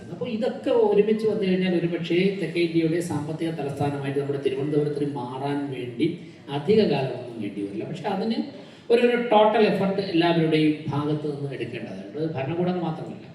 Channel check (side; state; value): both; identical; correlation 1.00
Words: അപ്പോൾ ഇതൊക്കെ ഒരുമിച്ച് വന്നു കഴിഞ്ഞാൽ ഒരുപക്ഷേ തെക്കേ ഇന്ത്യയുടെ സാമ്പത്തിക തലസ്ഥാനമായിട്ട് നമ്മുടെ തിരുവനന്തപുരത്തിന് മാറാൻ വേണ്ടി അധിക കാലമൊന്നും വേണ്ടി വരില്ല. പക്ഷെ അതിന് ഒരു ടോട്ടൽ എഫർട്ട് എല്ലാവരുടെയും ഭാഗത്ത് നിന്ന് എടുക്കേണ്ടതുണ്ട്. ഭരണകൂടം മാത്രമല്ല,